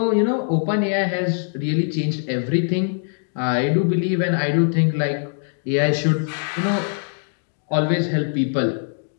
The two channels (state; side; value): silent; right; digital silence